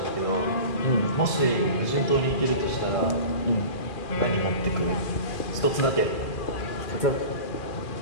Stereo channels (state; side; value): late; right; 2.4 ms